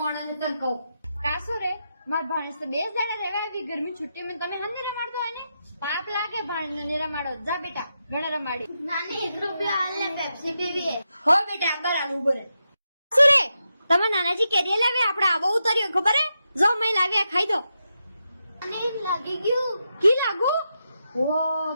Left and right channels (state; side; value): inverted; both; correlation -0.86